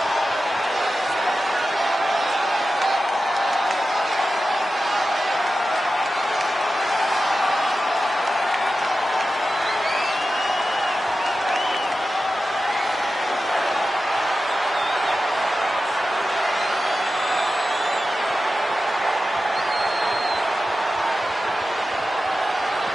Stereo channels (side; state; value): both; normal; correlation 0.93